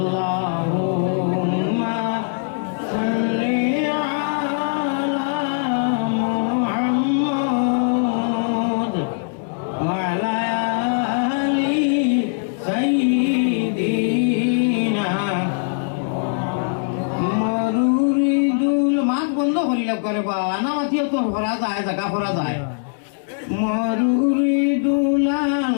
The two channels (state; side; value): silent; right; digital silence